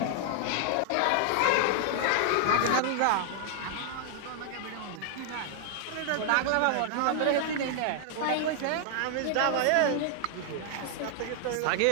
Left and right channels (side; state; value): both; different; correlation 0.00